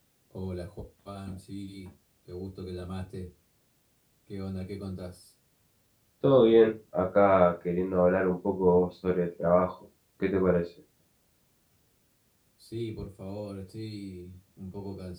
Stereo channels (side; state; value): both; identical; correlation 1.00